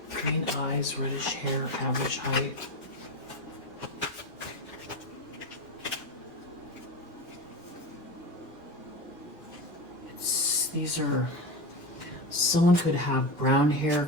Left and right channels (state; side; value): normal; both; correlation 0.21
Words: Green eyes, reddish hair, average height. These are, someone could have brown hair,